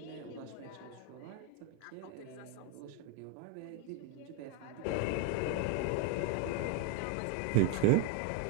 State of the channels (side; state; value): both; different; correlation 0.01